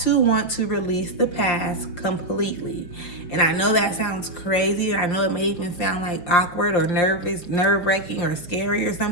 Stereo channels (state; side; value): late; right; 5.9 ms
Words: to want to release the past completely. And I know that sounds crazy. I know it may even sound like awkward or nervous, nerve-wracking or scary or